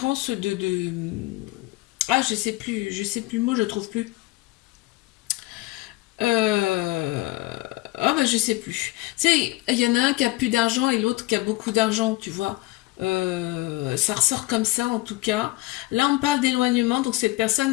ah, je sais plus le mot, je trouve plus. Ah bah je sais plus. Tu sais, il y en a un qui a plus d'argent et l'autre qui a beaucoup d'argent, tu vois. Ça ressort comme ça en tout cas. Là on parle d'éloignement, donc cette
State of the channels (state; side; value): quieter; right; 20.1 dB